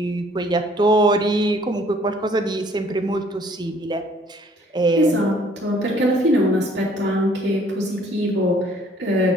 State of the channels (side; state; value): both; normal; correlation 0.59